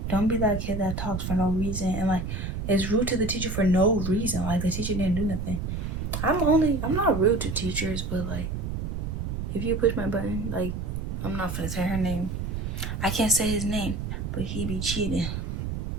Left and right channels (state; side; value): noise; right; rumble, 4 dB below the sound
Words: don't be that kid that talks for no reason and like is rude to the teacher for no reason. Like, the teacher didn't do nothing. I'm not rude to teachers, but like, if you push my button, like, I'm not gonna say her name. I can't say his name, but he be cheating.